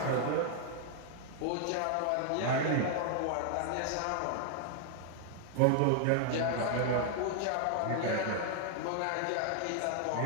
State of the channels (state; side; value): different; both; correlation 0.00